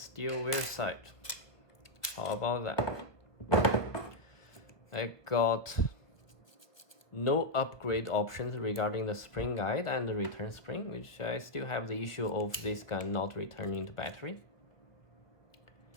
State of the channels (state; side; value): late; right; 1.0 ms